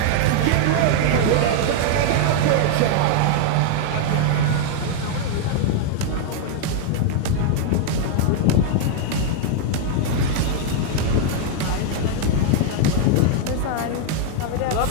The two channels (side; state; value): both; different; correlation 0.00